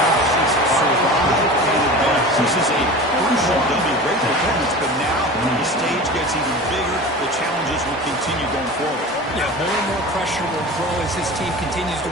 This is a crucial W. Great performance, but now the stage gets even bigger. The challenges will continue going forward. Yeah, more and more pressure will grow as this team continues to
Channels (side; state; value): both; normal; correlation 0.34